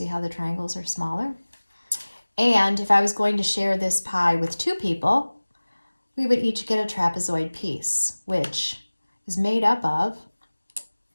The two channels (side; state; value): both; inverted; correlation -1.00